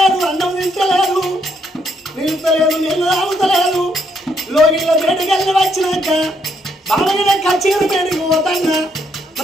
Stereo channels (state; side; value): normal; both; correlation 0.73